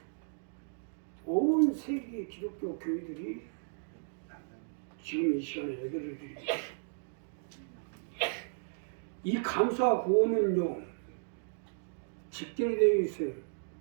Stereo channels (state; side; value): silent; left; digital silence